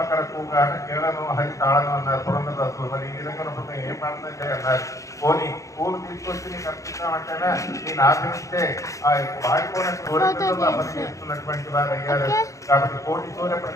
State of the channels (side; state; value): right; late; 0.15 ms